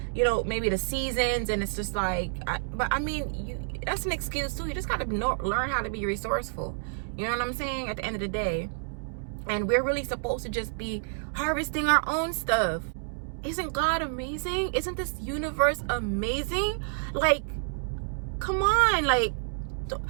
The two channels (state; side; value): silent; left; digital silence